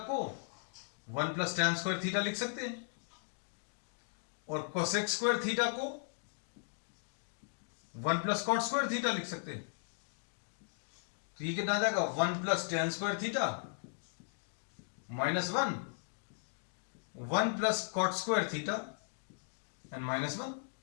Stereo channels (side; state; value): right; silent; digital silence